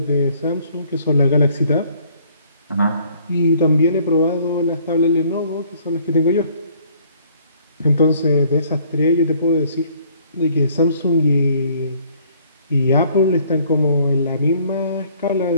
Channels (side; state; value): both; inverted; correlation -0.61